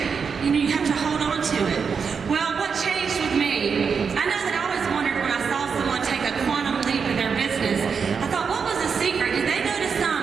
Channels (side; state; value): left; quieter; 6.0 dB